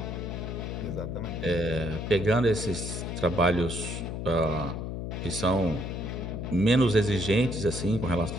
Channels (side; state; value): left; noise; hum, 5 dB below the sound